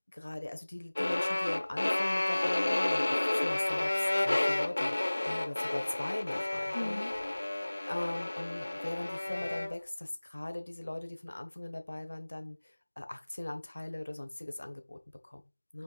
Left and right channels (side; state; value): both; inverted; correlation -1.00